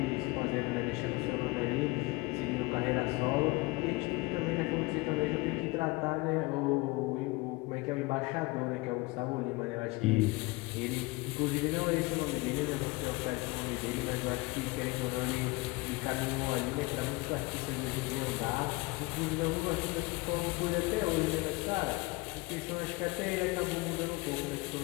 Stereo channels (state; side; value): quieter; right; 23.7 dB